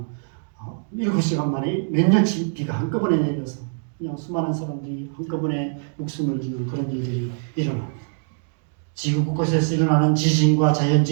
7시간 만에 몇 년치 비가 한꺼번에 내려서 그냥 수많은 사람들이 한꺼번에 목숨을 잃는 그런 일들이 일어납니다. 지구 곳곳에서 일어나는 지진과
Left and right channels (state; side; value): silent; left; digital silence